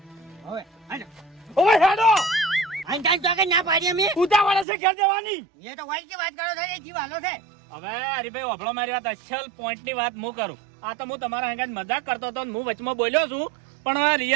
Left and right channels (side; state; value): left; drops out; at 4.7 s